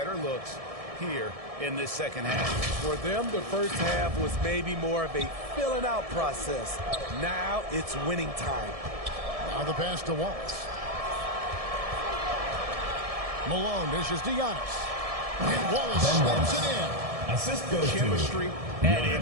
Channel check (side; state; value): left; late; 1.7 ms